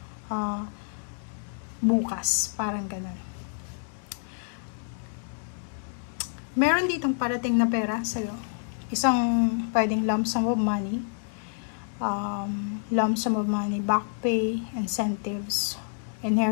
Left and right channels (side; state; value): right; silent; digital silence